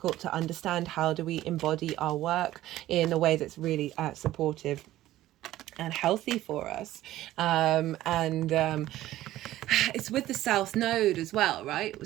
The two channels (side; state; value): left; quieter; 14.8 dB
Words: to understand how do we embody our work in a way that's really supportive and healthy for us. It's with the South Node as well, right?